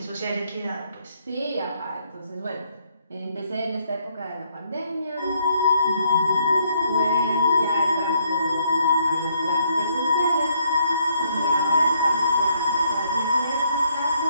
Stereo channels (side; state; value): both; inverted; correlation -0.69